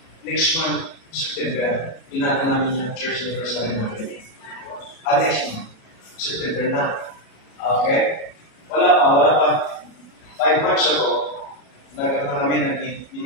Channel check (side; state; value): right; late; 37 ms